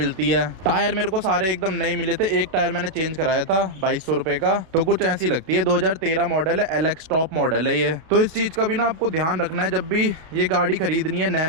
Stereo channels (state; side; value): late; left; 32 ms